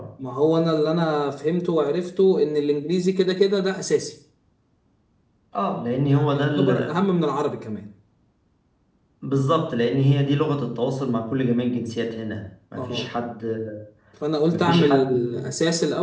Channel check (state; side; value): identical; both; correlation 1.00